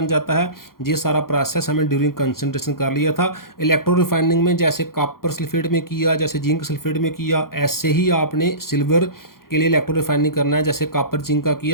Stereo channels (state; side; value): late; right; 0.92 ms